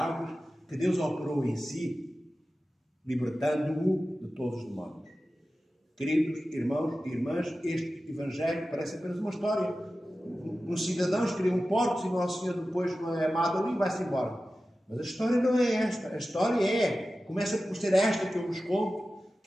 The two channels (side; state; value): both; normal; correlation 0.94